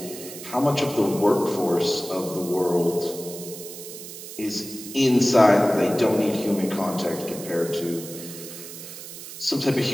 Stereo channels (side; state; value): right; noise; hiss, 12 dB below the sound